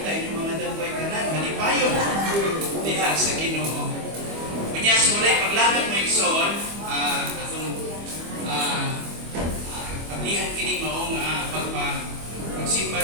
yung mga dagway kanan, malipayo diha sa Ginoo. Kanya simulay paglagat ng igsoon, atong pablihan kini mao nga pagsimba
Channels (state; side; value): late; left; 25 ms